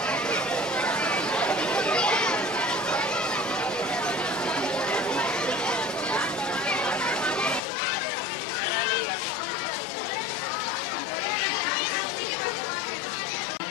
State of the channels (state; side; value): drops out; right; at 7.6 s